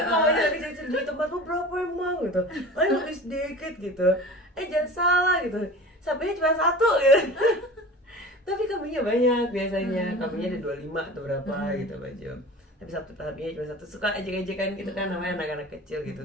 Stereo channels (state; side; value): normal; both; correlation 0.37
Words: namanya kecil-kecil di tempat lu berapa emang gitu, lebih sedikit gitu, jangan salah gitu, sapinya cuma satu gitu. Tapi kambingnya banyak biasanya, kambingnya ada 25 atau berapa gitu baju, tapi sapinya cuma satu. Suka ejek-ejekan gitu kan, namanya anak-anak kecil gitu.